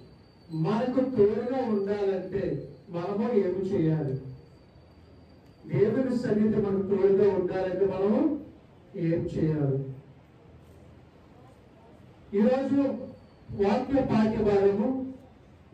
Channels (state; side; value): identical; both; correlation 1.00